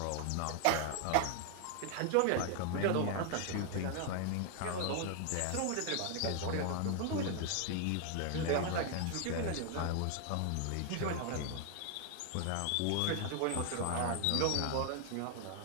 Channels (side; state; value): both; different; correlation 0.00